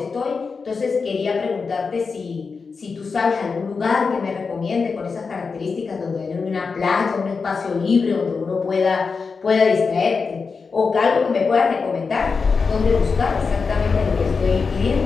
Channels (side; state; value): right; quieter; 4.9 dB